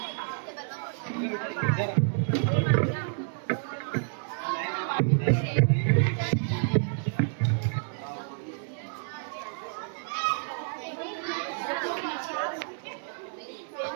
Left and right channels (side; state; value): left; silent; digital silence